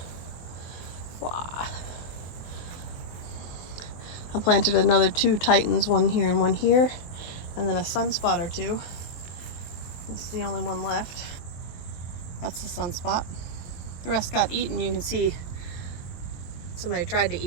Wow. I planted another two Titans, one here and one here, and then a sunspot or two. This is the only one left. That's the sunspot. The rest got eaten. You can see somebody tried to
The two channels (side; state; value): right; late; 23 ms